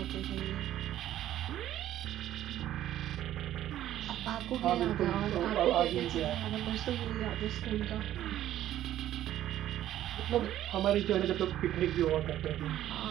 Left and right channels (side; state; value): left; quieter; 12.6 dB